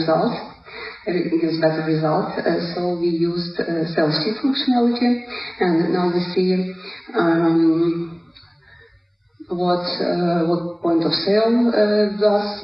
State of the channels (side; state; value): both; identical; correlation 1.00